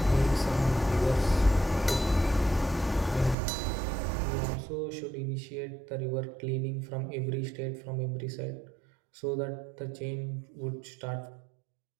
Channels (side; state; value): left; drops out; at 3.4 s